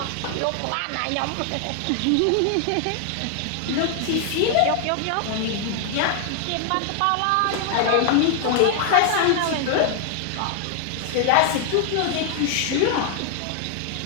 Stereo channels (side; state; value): both; different; correlation 0.00